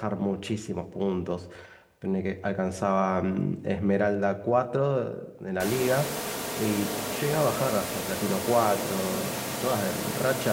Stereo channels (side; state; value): both; identical; correlation 1.00